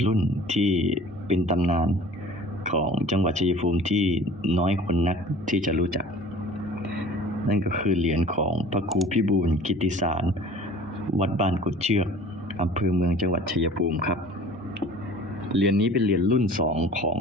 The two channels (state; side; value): normal; both; correlation 0.46